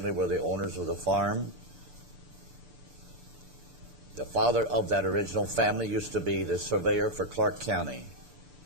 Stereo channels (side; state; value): left; late; 6.9 ms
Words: were the owners of the farm. The father of that original family used to be the surveyor for Clark County.